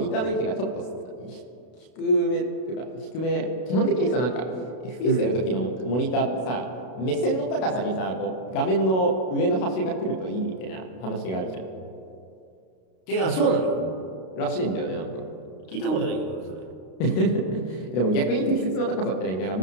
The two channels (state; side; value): late; right; 32 ms